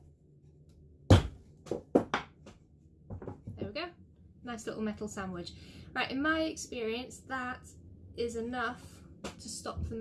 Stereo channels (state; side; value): identical; both; correlation 1.00